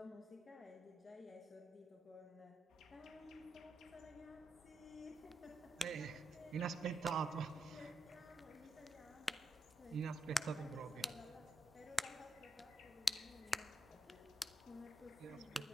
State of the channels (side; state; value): both; normal; correlation 0.84